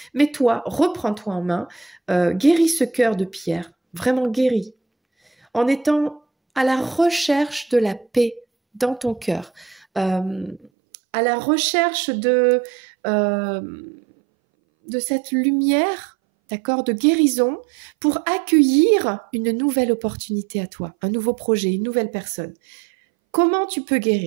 mais toi, reprends-toi en main, guéris ce cœur de pierre, vraiment guéris, en étant à la recherche de la paix dans ton cœur, à la recherche euh, de cette lumière, d'accord, de guérison pour accueillir une nouvelle opportunité à toi, un nouveau projet, une nouvelle personne. Comment tu peux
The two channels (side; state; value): left; drops out; at 10.7 s